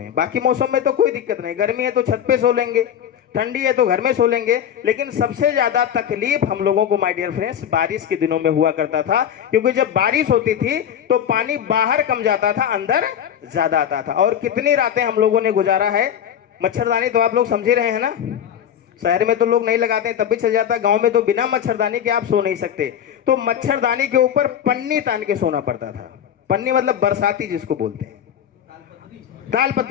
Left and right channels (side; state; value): right; quieter; 9.4 dB